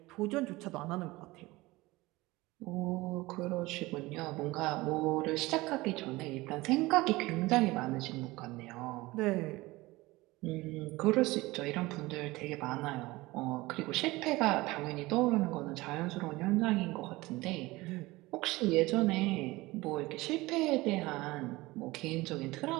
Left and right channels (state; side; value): quieter; left; 20.5 dB